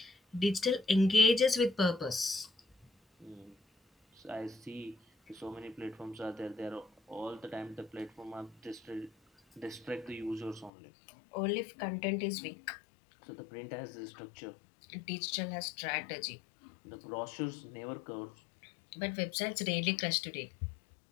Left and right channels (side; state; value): right; drops out; at 10.7 s